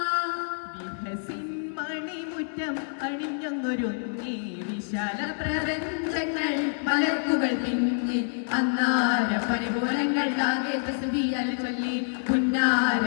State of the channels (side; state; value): right; silent; digital silence